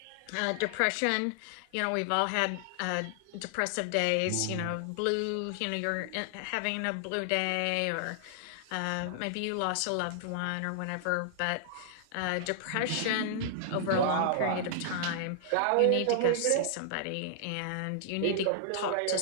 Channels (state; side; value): different; both; correlation -0.01